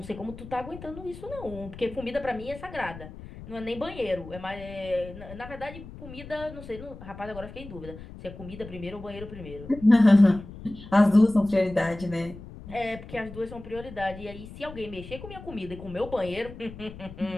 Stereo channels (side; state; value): left; noise; rumble, 14 dB below the sound